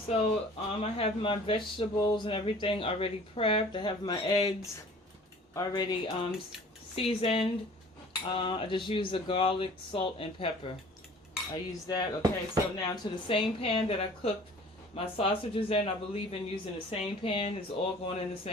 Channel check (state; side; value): normal; both; correlation 0.48